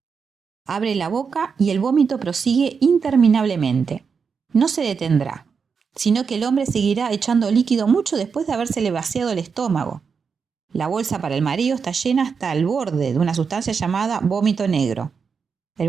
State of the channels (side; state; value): left; quieter; 5.8 dB